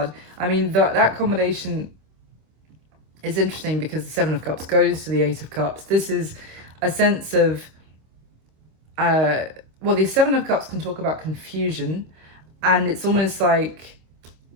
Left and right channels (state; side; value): late; left; 26 ms